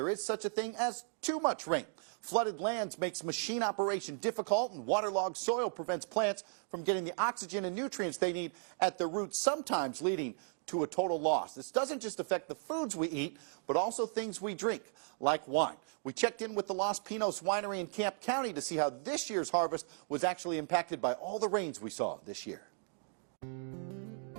is such a thing as too much rain. Flooded lands makes machine operation difficult, and waterlogged soil prevents plants from getting the oxygen and nutrients they need at the roots, sometimes leading to a total loss. This doesn't just affect the foods we eat, but also things we drink, like wine. We checked in with the Los Pinos Winery in Camp County to see how this year's harvest was actually impacted by all the rains we saw this year. Texas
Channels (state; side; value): silent; left; 54 dB below the other